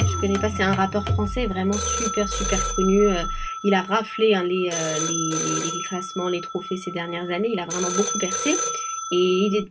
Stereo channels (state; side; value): identical; both; correlation 1.00